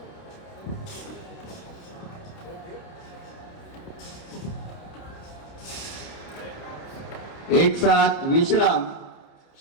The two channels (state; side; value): late; right; 29 ms